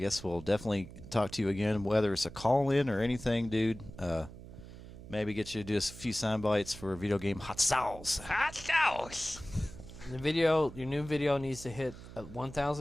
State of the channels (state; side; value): noise; right; hum, 15 dB below the sound